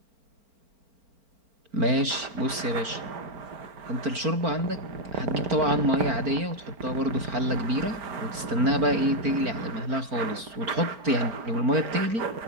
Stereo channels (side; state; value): left; late; 4.4 ms